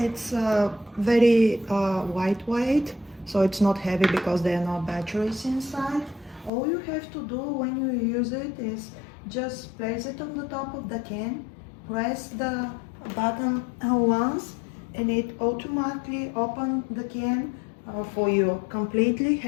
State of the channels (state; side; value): drops out; right; at 6.5 s